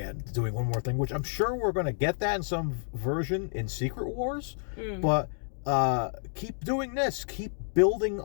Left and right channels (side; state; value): right; silent; digital silence